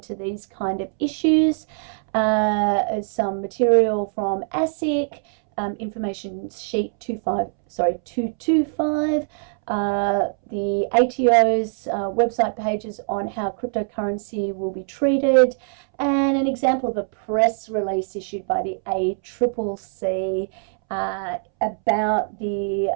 these kind of issues. Some material from ASIC, information sheet 225, the ATO's website pages on how cryptocurrency will be treated, and an example of a press release issued by the ACCC about the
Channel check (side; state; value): left; silent; 64 dB below the other